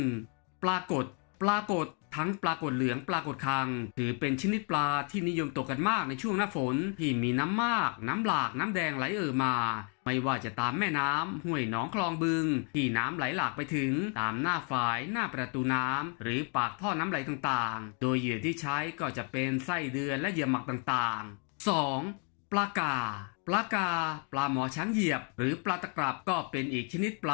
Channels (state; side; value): quieter; right; 39.5 dB